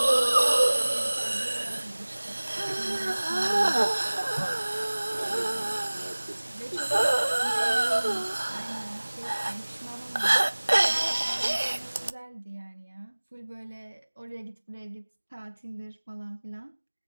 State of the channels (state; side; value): inverted; both; correlation -1.00